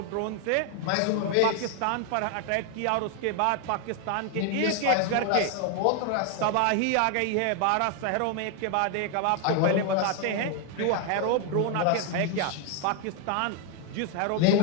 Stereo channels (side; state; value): both; different; correlation 0.01